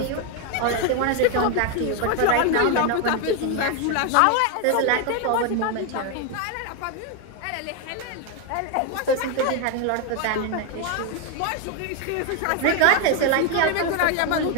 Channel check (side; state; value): both; different; correlation 0.01